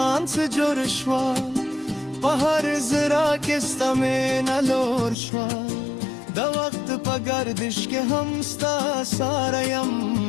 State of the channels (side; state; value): right; drops out; at 5.2 s